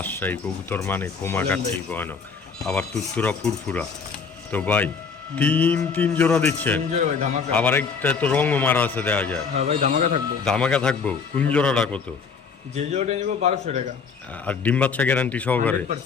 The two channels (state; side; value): quieter; right; 5.5 dB